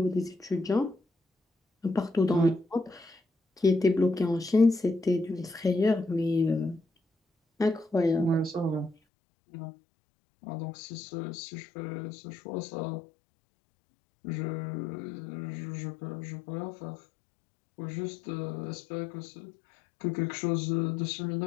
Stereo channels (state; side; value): drops out; right; at 9.0 s